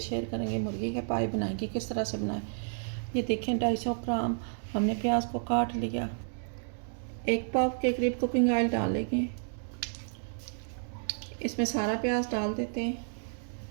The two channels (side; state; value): left; silent; digital silence